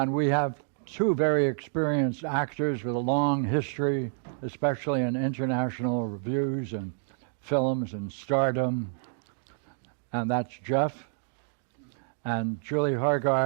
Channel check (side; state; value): left; silent; digital silence